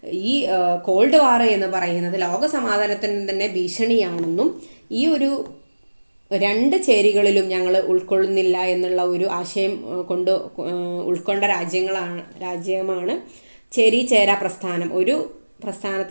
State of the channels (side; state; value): both; inverted; correlation -1.00